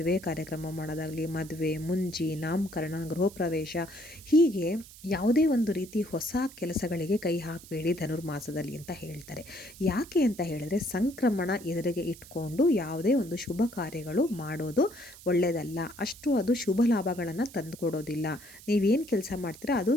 ಕಾರ್ಯಕ್ರಮ ಮಾಡೋದಾಗಲಿ, ಮದುವೆ, ಮುಂಜಿ, ನಾಮಕರಣ, ಗೃಹ ಪ್ರವೇಶ ಹೀಗೆ ಯಾವುದೇ ಒಂದು ರೀತಿ ಹೊಸ ಕೆಲಸಗಳಿಗೆ ಕೈ ಹಾಕಬೇಡಿ ಧನುರ್ಮಾಸದಲ್ಲಿ ಅಂತ ಹೇಳ್ತಾರೆ. ಯಾಕೆ ಅಂತ ಹೇಳಿದ್ರೆ ಸಂಕ್ರಮಣ ಎದುರಿಗೆ ಇಟ್ಕೊಂಡು ಯಾವುದೇ ಒಂದು ಶುಭ ಕಾರ್ಯಗಳು ಮಾಡೋದು ಒಳ್ಳೆಯದಲ್ಲ. ಅಷ್ಟು ಅದು ಶುಭ ಲಾಭಗಳನ್ನು ತಂದುಕೊಡೋದಿಲ್ಲ. ನೀವೇನು ಕೆಲಸ ಮಾಡ್ತೀರಾ ಅದು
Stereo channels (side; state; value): right; noise; hiss, 19 dB below the sound